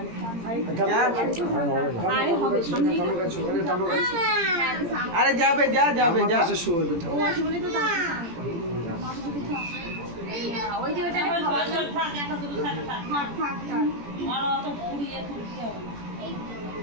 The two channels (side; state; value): left; late; 17 ms